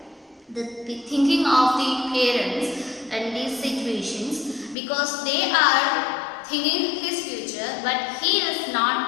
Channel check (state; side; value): drops out; right; at 4.8 s